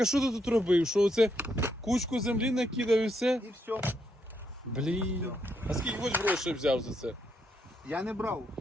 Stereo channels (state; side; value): normal; both; correlation 0.77